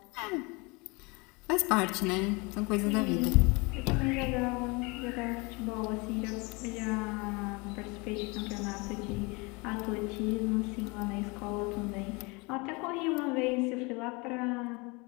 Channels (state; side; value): quieter; right; 27.6 dB